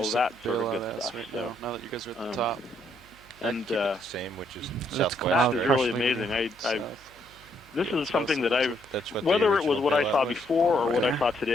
of that sort of good stuff. So now that you guys are at the top, and the same, which is southwest. That is really amazing. This is something that whether it was what I saw before or what I saw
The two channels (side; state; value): right; noise; hum, 26 dB below the sound